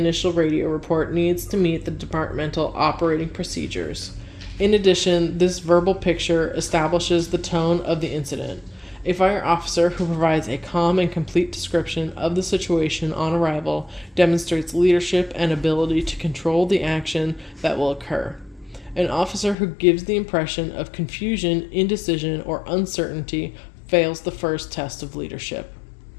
radio report needs to meet the departmental operating procedures. In addition, this verbal picture establishes the tone of the incident. A fire officer who provides a calm and complete description of the situation on arrival demonstrates leadership and ability to control the action that will occur. An officer who gives the impression of confusion, indecision, or uncertainty fails the first test of leadership.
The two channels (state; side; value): drops out; right; at 19.6 s